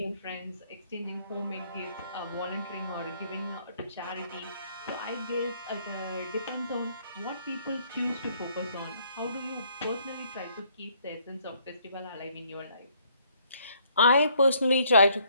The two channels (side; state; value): both; inverted; correlation -0.66